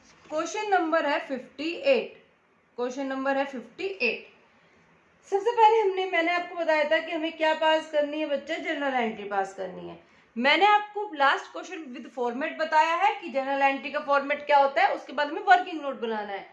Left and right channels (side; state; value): both; identical; correlation 1.00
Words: क्वेश्चन नंबर है 58, क्वेश्चन नंबर है 58। सबसे पहले मैंने आपको बताया था कि हमें क्या पास करनी है बच्चे, जनरल एंट्री पास करनी है। मैंने आपको लास्ट क्वेश्चन विद फॉर्मेट बताया है कि जनरल एंट्री का फॉर्मेट क्या होता है, उसके बाद हमें वर्किंग नोट बनाना है।